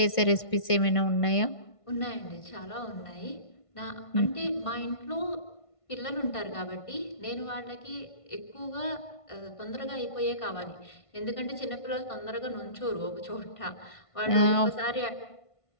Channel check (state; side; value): late; right; 1.5 ms